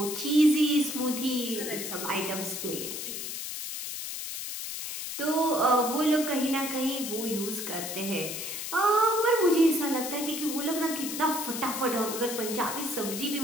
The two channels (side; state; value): left; noise; hiss, 6 dB below the sound